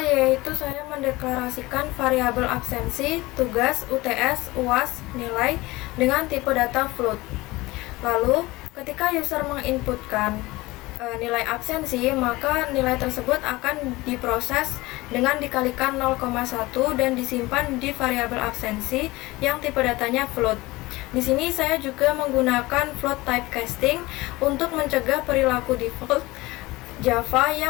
saya mendeklarasikan variabel absensi, tugas, UTS, UAS, nilai dengan tipe data float. Lalu, ketika user menginputkan nilai absensi, maka nilai tersebut akan diproses dengan dikalikan 0,1 dan disimpan di variabel absensi yang tipe datanya float. Di sini saya juga menggunakan float typecasting untuk mencegah perilaku default Java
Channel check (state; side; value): quieter; right; 20.6 dB